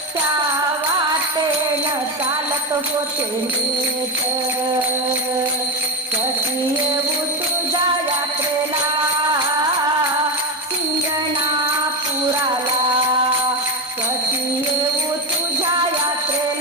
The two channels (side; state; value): both; normal; correlation 0.13